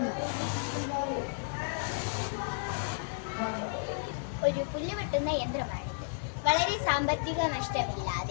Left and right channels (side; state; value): right; silent; digital silence